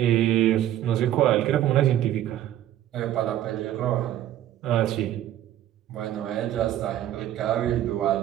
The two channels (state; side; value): quieter; left; 12.4 dB